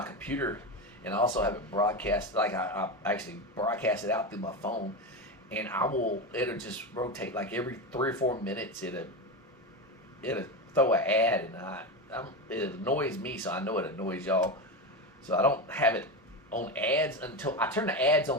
computer, and I also have it broadcast. Like, I actually broadcast it out through my phone, and it'll just rotate like every 3 or 4 minutes. It'll throw an ad, and it annoys me, so I know it annoys y'all. So I don't have it on ads until I turn the ads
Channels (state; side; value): normal; both; correlation 0.17